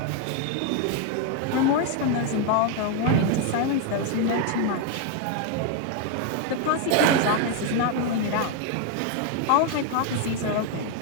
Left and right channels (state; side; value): different; both; correlation 0.01